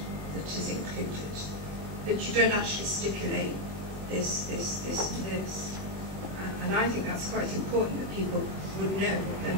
that is included, but you don't actually stipulate this, and this. And I think that's quite important that people would know what they're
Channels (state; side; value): late; left; 21 ms